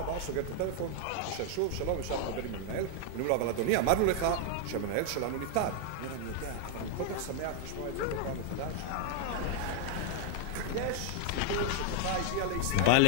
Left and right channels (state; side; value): different; both; correlation 0.00